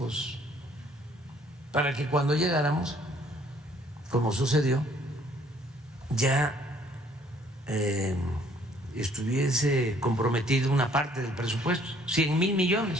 para que cuando llegáramos, como sucedió, ya estuviese comprometido una parte del presupuesto, 100,000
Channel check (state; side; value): normal; both; correlation 0.61